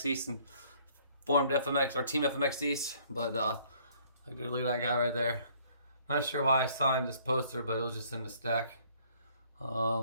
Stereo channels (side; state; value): both; inverted; correlation -0.60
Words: East and formed FMX or Team FMX East. But look at that guy right there. Not sure why I signed this poster, but it was just in the stack.